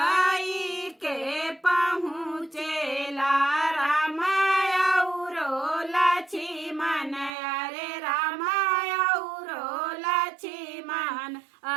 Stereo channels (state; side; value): drops out; left; at 7.3 s